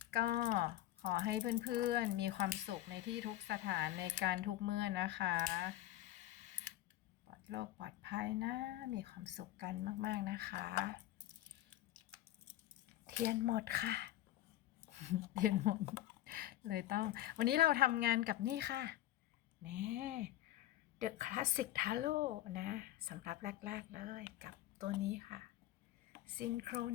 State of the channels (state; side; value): quieter; right; 14.4 dB